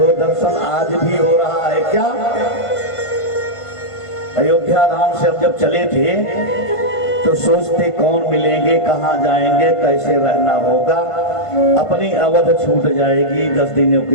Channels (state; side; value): late; right; 1.5 ms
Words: दर्शन आज भी हो रहा है। क्या अयोध्या धाम से हम जब चले थे तो सोचते कौन मिलेंगे, कहाँ जाएंगे, कैसे रहना होगा, अपनी अवध छूट जाएगी 10 दिनों के